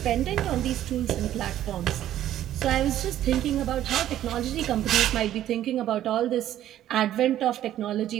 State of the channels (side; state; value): left; quieter; 12.3 dB